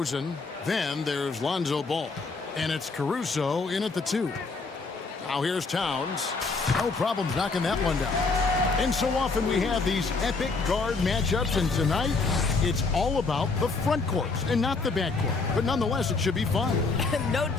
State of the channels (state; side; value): quieter; right; 4.1 dB